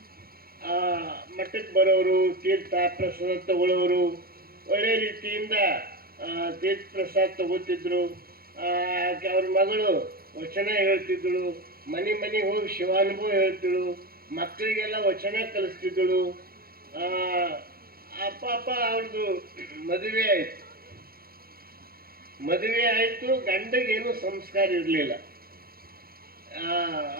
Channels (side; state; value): left; late; 0.44 ms